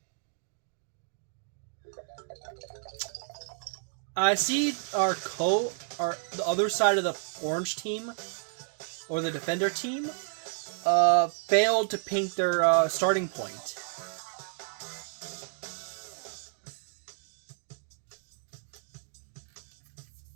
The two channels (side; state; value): left; silent; 57 dB below the other